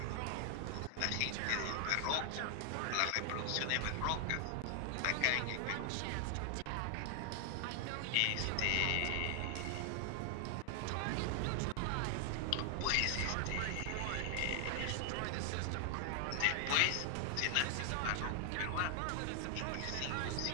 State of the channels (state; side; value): different; both; correlation 0.00